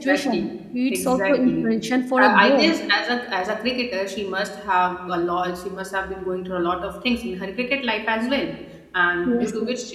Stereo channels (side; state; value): both; identical; correlation 1.00